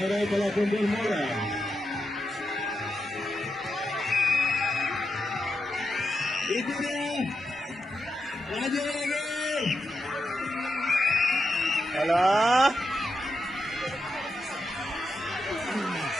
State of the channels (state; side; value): normal; both; correlation 0.86